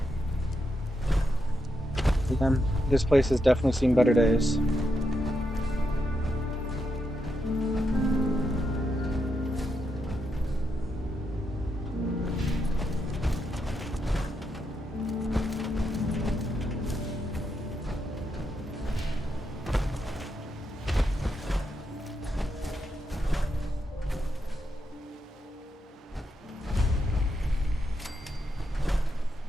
Again, this place has definitely seen better days.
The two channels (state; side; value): normal; both; correlation 0.83